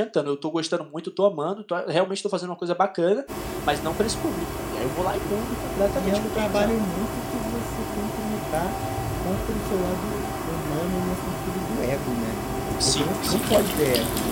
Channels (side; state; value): both; identical; correlation 1.00